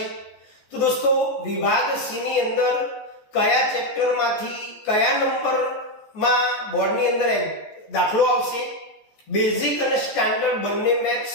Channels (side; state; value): right; late; 14 ms